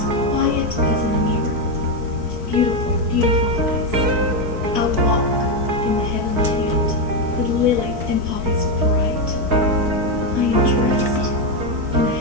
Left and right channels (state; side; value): late; left; 4.6 ms